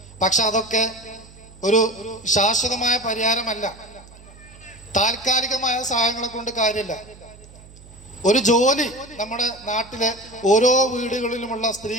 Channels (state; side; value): noise; right; hum, 21 dB below the sound